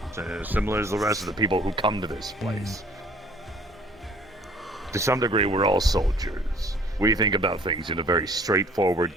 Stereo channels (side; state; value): both; normal; correlation 0.54